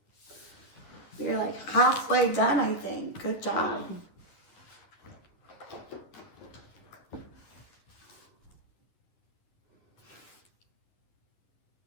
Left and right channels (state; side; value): late; right; 11 ms